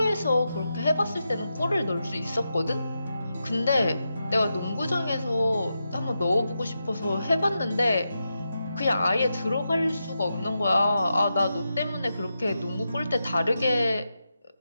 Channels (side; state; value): both; inverted; correlation -0.88